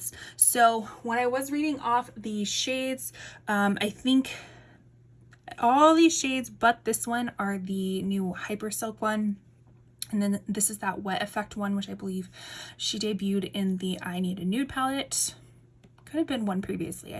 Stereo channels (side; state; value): both; identical; correlation 1.00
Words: So when I was reading off the shades, I think all these shades but this one are the new Hyper Silk one. And then this is that wet effect one, which I believe she debuted in the I Need a Nude palette. Could have been one previously,